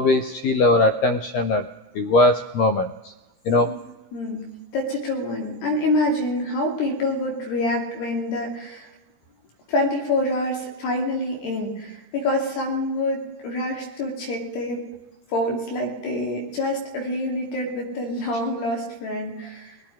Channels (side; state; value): right; late; 13 ms